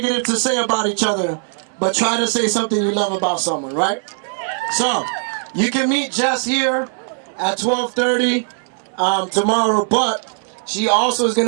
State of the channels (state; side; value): silent; left; 60 dB below the other